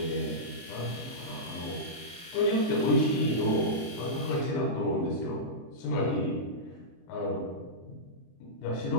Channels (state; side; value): late; right; 23 ms